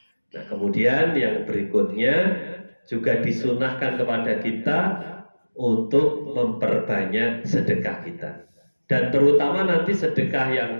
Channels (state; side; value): inverted; both; correlation -1.00